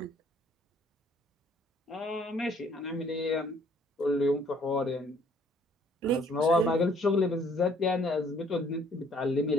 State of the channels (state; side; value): normal; both; correlation 0.61